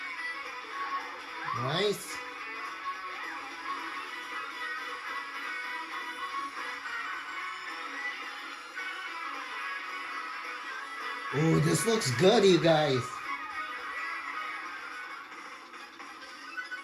Nice. Ooh, this looks good, you guys.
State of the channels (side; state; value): both; identical; correlation 1.00